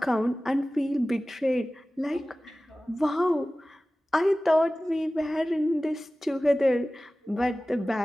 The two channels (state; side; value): normal; both; correlation 0.97